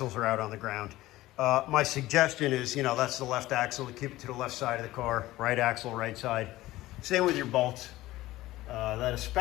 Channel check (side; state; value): right; quieter; 16.9 dB